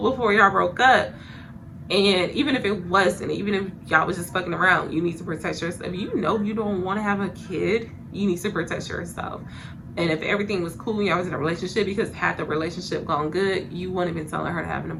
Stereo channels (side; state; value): both; identical; correlation 1.00